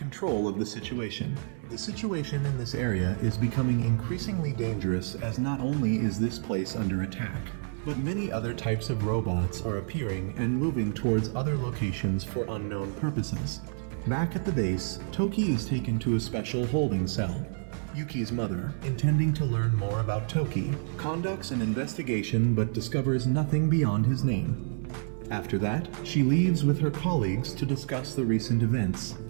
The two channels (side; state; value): left; silent; 59 dB below the other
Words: of the situation. The situation in this area is becoming increasingly dangerous as not only is this place under attack, but many other types of robots are appearing and moving towards other locations for unknown purposes. Back at the base, Toki is taken to a special holding cell. Yuki's mother, intending to learn more about Toki, conducts an investigation but discovers nothing beyond his name. After that, she leaves with her colleagues to discuss the recent events,